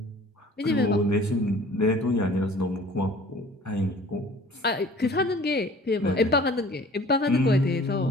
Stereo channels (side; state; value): both; normal; correlation 0.49